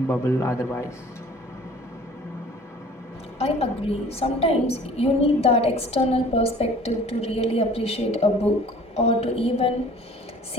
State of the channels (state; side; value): normal; both; correlation 0.49